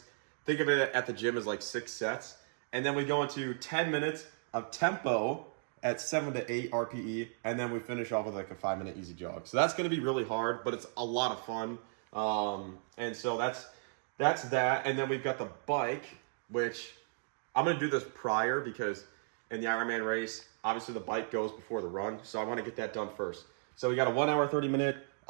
Think of it at the gym as 6 sets. And then we go into 10 minutes of tempo at 7 to 8 RPE. And then we finish off with a 5-minute easy jog. So that's going to be really hard, but it's a lot of fun. And so that's that. And then we've got the bike, which I'm going to do this prior because in the Ironman race, obviously the bike goes before the run. So I want to get that done first. So we got a 1 hour, 30-minute.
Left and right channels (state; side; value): silent; left; digital silence